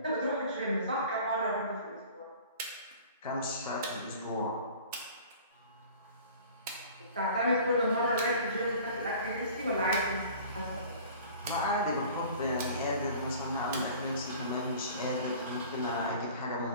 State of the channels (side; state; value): both; inverted; correlation -0.45